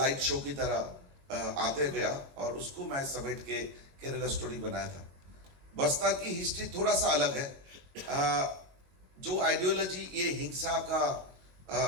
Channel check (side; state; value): left; late; 22 ms